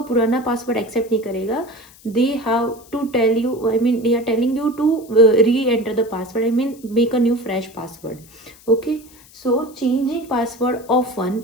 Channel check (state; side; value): noise; left; hiss, 24 dB below the sound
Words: पुराना पासवर्ड एक्सेप्ट नहीं करेगा. They have to tell you, I mean they are telling you to re-enter the password, I mean make a new fresh password. Okay, so changing password often